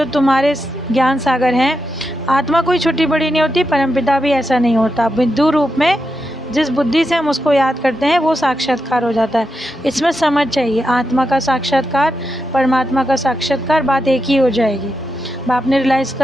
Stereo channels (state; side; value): normal; both; correlation 0.86